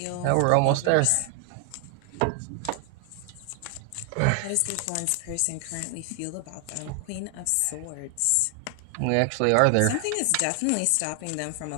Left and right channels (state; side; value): different; both; correlation 0.00